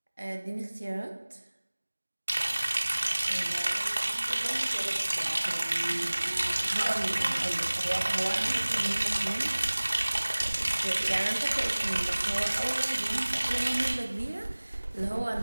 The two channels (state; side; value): inverted; both; correlation -1.00